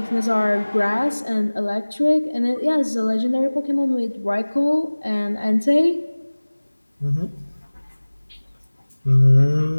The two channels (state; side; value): inverted; both; correlation -1.00